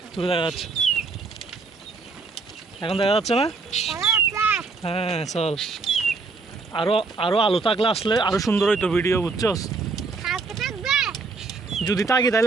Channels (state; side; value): quieter; left; 4.1 dB